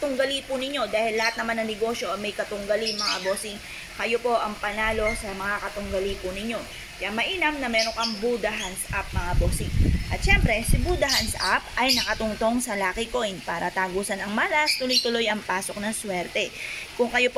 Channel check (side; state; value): both; identical; correlation 1.00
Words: po ninyo, dahil lahat naman ng negosyo ay may katunggali mga bossing, kayo po ang panalo sa mga katunggali po ninyo. Kaya mainam na meron kang Buddha Hands Up mga bossing. At syempre, si Buddha Hands Up ay nakatungtong sa lucky coin para tagusan ang malas, tuloy-tuloy ang pasok ng swerte. Kung kayo